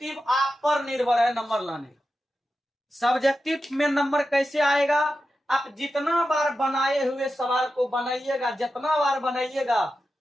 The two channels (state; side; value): normal; both; correlation 0.91